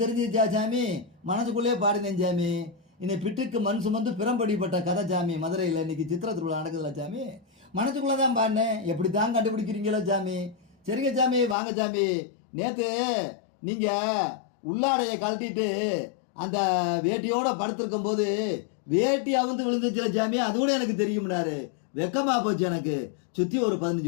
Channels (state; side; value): drops out; right; at 11.6 s